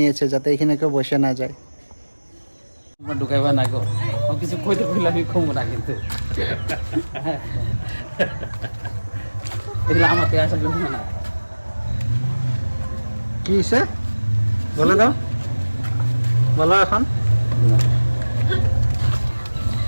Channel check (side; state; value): both; inverted; correlation -1.00